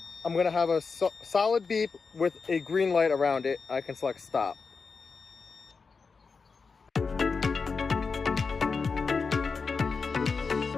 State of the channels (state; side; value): quieter; right; 4.9 dB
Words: I'm going to have a solid beep with a green light around it. I can select stop.